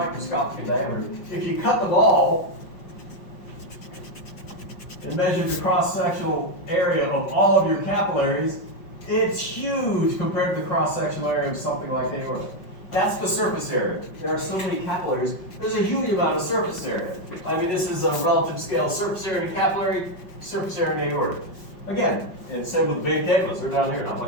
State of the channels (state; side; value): late; right; 5.4 ms